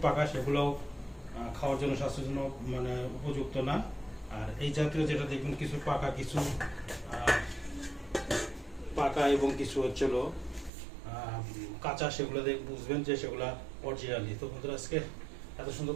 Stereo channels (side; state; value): left; drops out; at 10.7 s